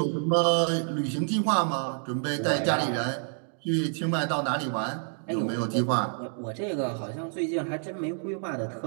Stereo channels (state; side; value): silent; left; 56 dB below the other